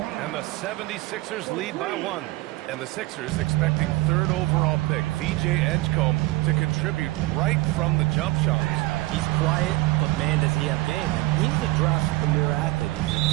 And the 76ers lead by 1. And the Sixers expecting 3rd overall pick, VJ Edgecombe, to contribute right from the jump shots. He's quiet, but man, does he have game. And he's a draft premier athlete. He's a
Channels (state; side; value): quieter; left; 20.2 dB